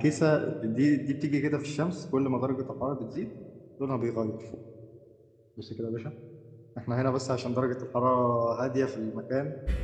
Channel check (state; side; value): identical; both; correlation 1.00